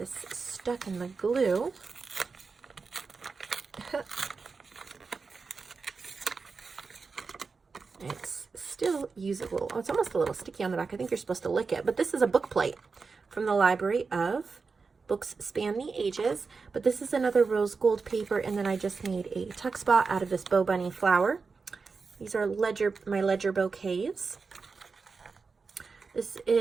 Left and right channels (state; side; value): quieter; left; 4.7 dB